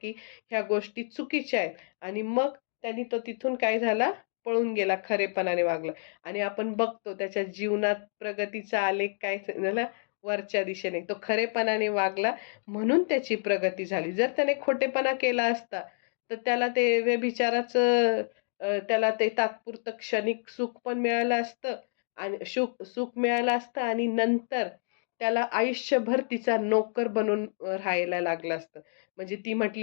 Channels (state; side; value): silent; right; digital silence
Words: ह्या गोष्टी चुकीच्या आहेत. आणि मग त्यांनी तो तिथून काय झाला, पळून गेला, खरेपणाने वागला. आणि आपण बघतो त्याच्या जीवनात प्रगतीचा आलेख काय झाला, वरच्या दिशेने. तो खरेपणाने वागला म्हणून त्याची प्रगती झाली. जर त्याने खोटेपणा केला असता, तर त्याला ते व्यभिचाराचं त्याला ते तात्पुरतं क्षणिक सुख पण मिळालं असतं आणि सुख मिळालं असतं आणि नंतर त्याला आयुष्यभर तिचा नोकर बनून राहायला लागलं असतं. म्हणजे ती